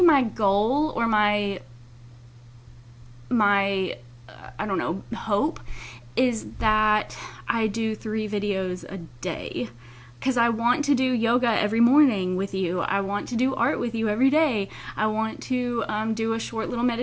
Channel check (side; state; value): both; identical; correlation 1.00